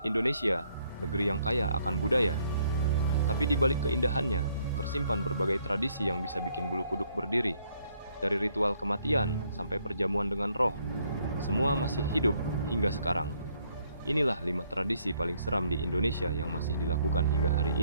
Indonesia, negeri yang kaya akan budaya. Tapi di balik keindahannya, tersimpan berbagai tradisi yang bisa bikin bulu kuduk berdiri. Dari ritual kematian sampai perjamuan dengan roh, semua masih hidup hingga sekarang. Inilah 5 tradisi paling seram di Indonesia yang masih dilakukan hingga hari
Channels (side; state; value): both; inverted; correlation -0.69